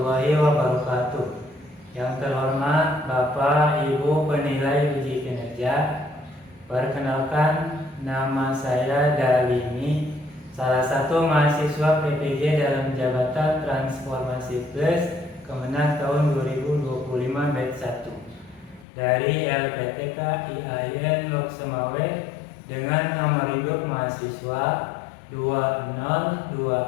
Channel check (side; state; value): right; drops out; at 18.9 s